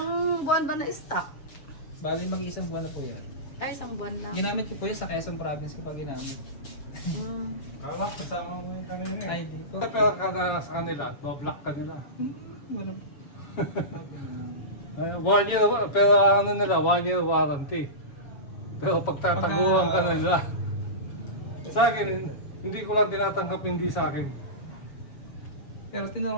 buwan ba na stock? Bali mag-iisang buwan na po yan. Ay, isang buwan lang. Ginamit ko po yan sa Quezon Province ko pa ginamit. Kala, kasama mo yung kanina eh. Ay, hindi po. Pero ka na sa kanila, no-block ka nila. Wala. Ay, 1 year, pero ano nila, 1 year warranty. Pero pagtataguan ka nila. Sa akin, hindi ko lang tinatanggap hindi sa akin. Pero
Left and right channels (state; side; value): late; right; 7.1 ms